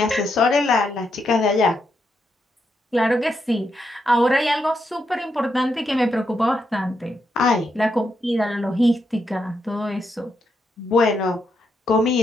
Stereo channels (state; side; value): normal; both; correlation 0.81